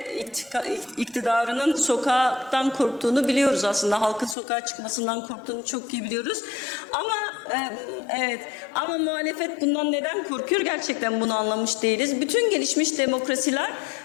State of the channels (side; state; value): right; drops out; at 4.4 s